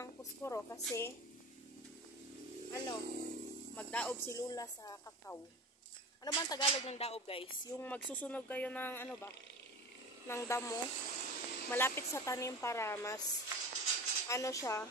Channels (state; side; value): normal; both; correlation 0.33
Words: puskuro kasi magdaob si Lola sa kakao. Ano ba ang Tagalog ng daob guys? Yung magsusunog kayo ng ng damo malapit sa tanim para mas